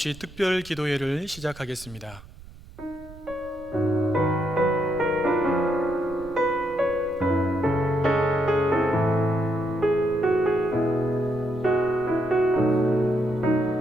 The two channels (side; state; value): right; noise; rumble, 19 dB below the sound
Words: 특별 기도회를 시작하겠습니다.